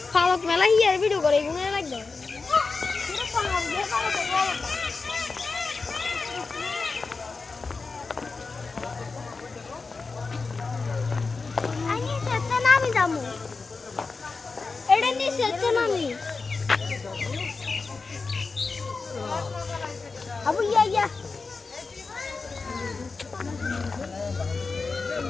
ফালক মেলা হিয়ার ভিডিও করে এগুলো লাগবে পুরো ফালক দিয়ে ফালক আমি সেটা নামি দামু এটা নি সেটা নামি আবু ইয়া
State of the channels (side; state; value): right; quieter; 4.2 dB